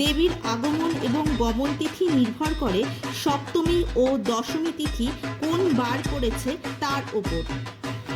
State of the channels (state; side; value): identical; both; correlation 1.00